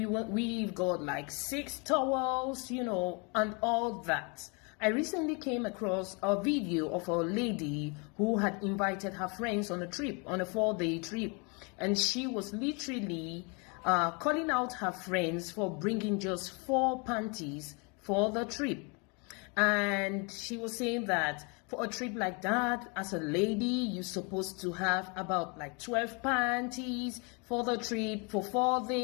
got like 6 towels, and all that. I recently came across a video of a lady who had invited her friends on a trip, on a 4-day trip. And she was literally calling out her friends for bringing just 4 panties for the trip. And she was saying that for a trip like that, as a lady, you're supposed to have about like 12 panties for the trip for 4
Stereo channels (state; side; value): quieter; right; 32.3 dB